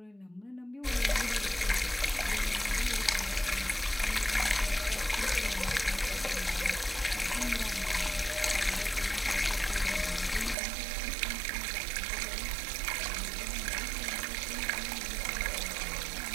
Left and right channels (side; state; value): left; drops out; at 10.6 s